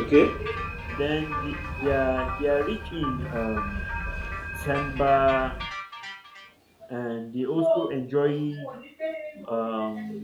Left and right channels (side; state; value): both; identical; correlation 1.00